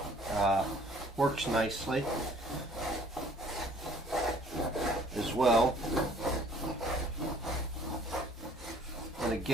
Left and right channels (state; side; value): normal; both; correlation 0.56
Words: Works nicely as well. And